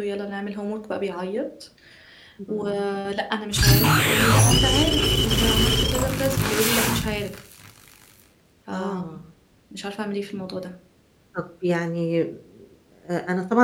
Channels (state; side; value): identical; both; correlation 1.00